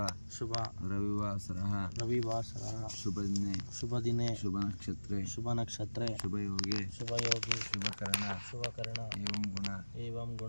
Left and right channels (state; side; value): inverted; both; correlation -1.00